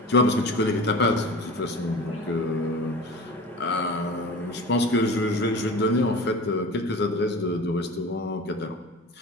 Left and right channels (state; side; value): normal; both; correlation 0.36